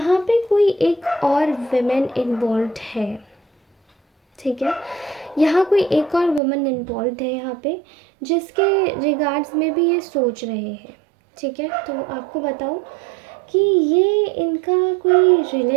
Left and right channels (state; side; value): drops out; left; at 6.4 s